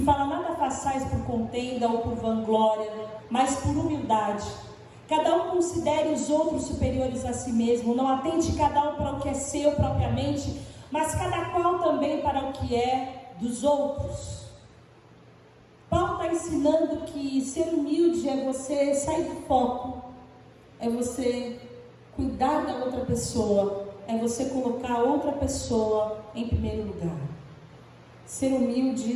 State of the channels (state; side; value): identical; both; correlation 1.00